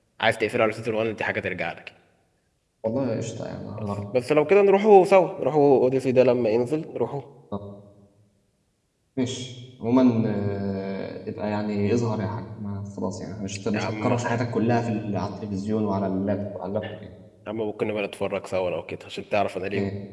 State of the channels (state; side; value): identical; both; correlation 1.00